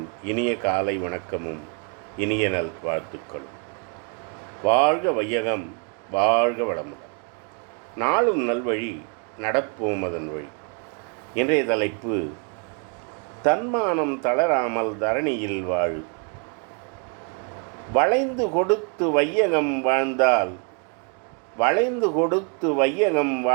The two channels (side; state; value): left; quieter; 36.7 dB